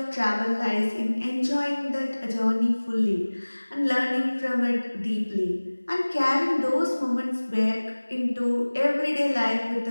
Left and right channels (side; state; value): both; inverted; correlation -1.00